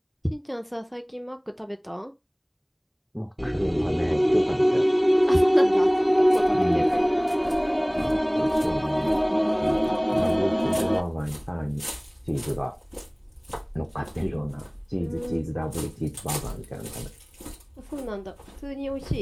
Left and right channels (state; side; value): identical; both; correlation 1.00